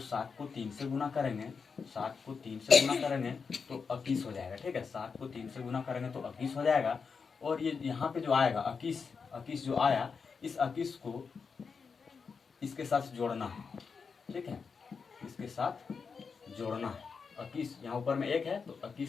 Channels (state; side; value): quieter; right; 5.5 dB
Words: 7 को 3 से गुना करेंगे, 7 को 3 से गुना करेंगे तो 21 हो जाएगा, ठीक है। 7 को 3 से गुना करेंगे तो 21 हो जाएगा। और ये यहाँ पे जो आएगा 21 जो आया, इस 21 को इसके साथ जोड़ना है, ठीक है, इसके साथ जोड़ना है। 21 यहाँ ऊपर में 1 है तो